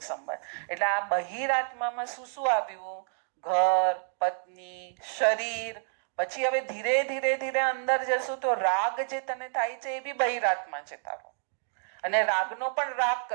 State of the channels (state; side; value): silent; left; digital silence